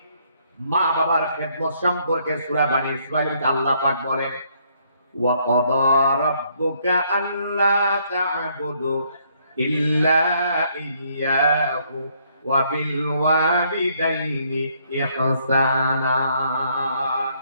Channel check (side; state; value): both; inverted; correlation -0.69